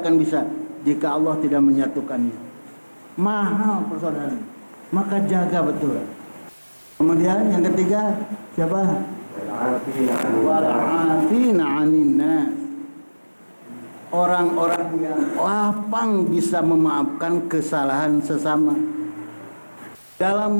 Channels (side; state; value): both; inverted; correlation -1.00